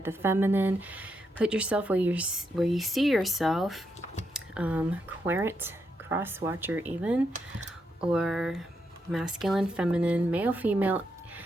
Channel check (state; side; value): normal; both; correlation 0.81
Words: the feminine. Put yourself where you see yourself, querent, cross watcher even, or masculine, feminine, male, female.